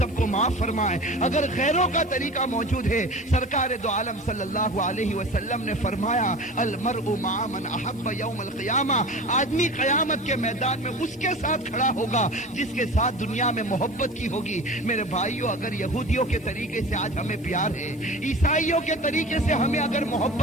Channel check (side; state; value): both; normal; correlation 0.36